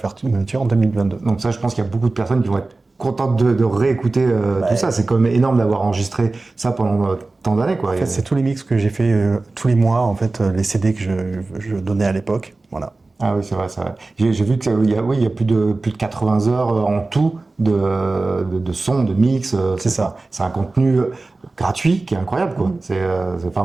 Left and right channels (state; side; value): quieter; left; 3.4 dB